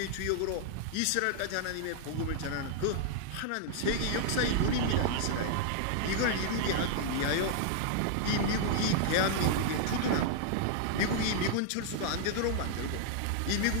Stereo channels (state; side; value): different; both; correlation -0.01